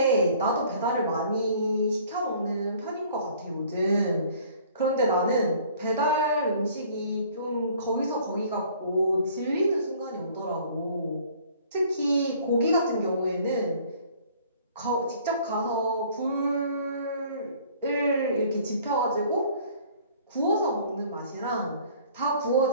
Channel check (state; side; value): inverted; both; correlation -0.54